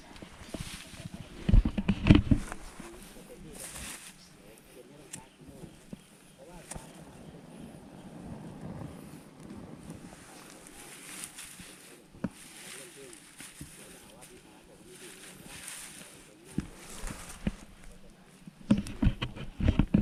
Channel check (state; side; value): identical; both; correlation 1.00